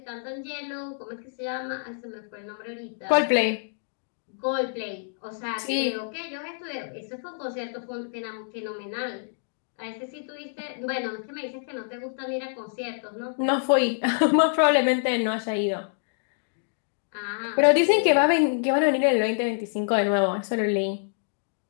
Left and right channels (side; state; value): right; silent; digital silence